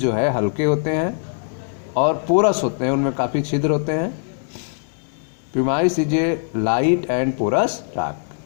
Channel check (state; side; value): silent; right; digital silence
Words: है हल्के होते हैं और पोरस होते हैं, उनमें काफ़ी छिद्र होते हैं। Pumice is a light and porous